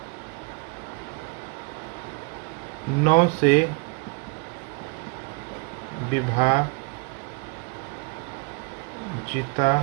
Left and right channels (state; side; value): quieter; left; 31.1 dB